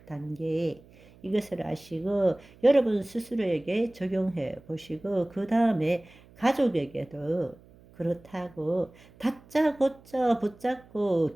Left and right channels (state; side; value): noise; right; hum, 25 dB below the sound